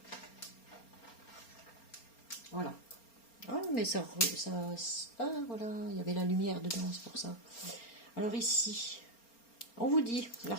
Voilà. Ah, mais ah, voilà, il y avait la lumière dedans, c'est pour ça. Alors ici, on vous dit,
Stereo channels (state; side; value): late; right; 4.3 ms